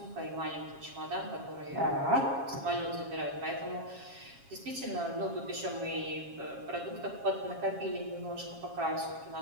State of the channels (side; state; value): left; late; 7.3 ms